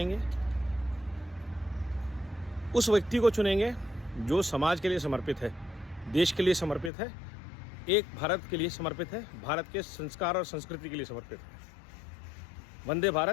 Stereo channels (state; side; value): drops out; right; at 6.9 s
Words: उस व्यक्ति को चुनेंगे जो समाज के लिए समर्पित है, देश के लिए समर्पित है, एक भारत के लिए समर्पित है, भारत के संस्कार और संस्कृति के लिए समर्पित है। वंदे